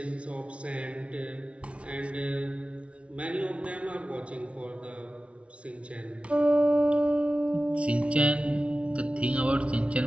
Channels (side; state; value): left; late; 0.061 ms